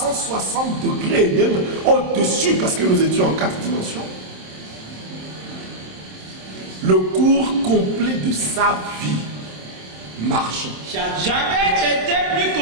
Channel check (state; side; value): late; left; 27 ms